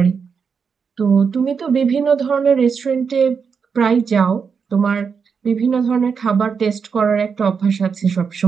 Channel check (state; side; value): quieter; left; 6.0 dB